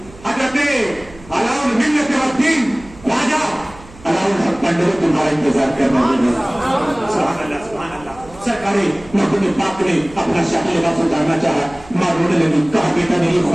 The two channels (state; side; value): noise; right; hum, 21 dB below the sound